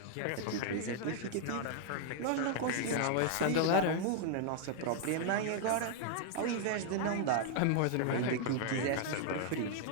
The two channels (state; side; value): different; both; correlation 0.00